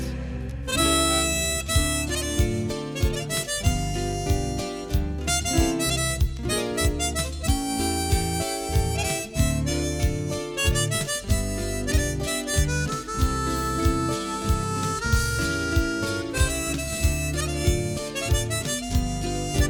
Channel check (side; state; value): both; identical; correlation 1.00